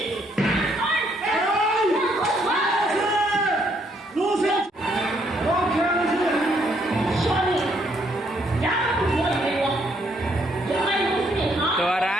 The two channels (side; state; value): both; normal; correlation 0.71